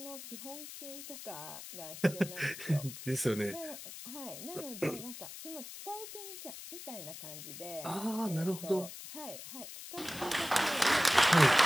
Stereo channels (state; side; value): noise; left; hiss, 12 dB below the sound